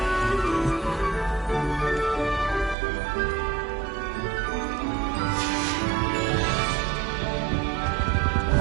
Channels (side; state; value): left; drops out; at 2.8 s